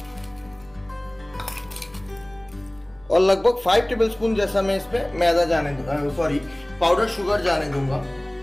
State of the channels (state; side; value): noise; right; rumble, 27 dB below the sound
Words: और लगभग 5 टेबलस्पून जैसा मैं इसमें मैदा जाने दूंगा, पाउडर शुगर जाने दूंगा।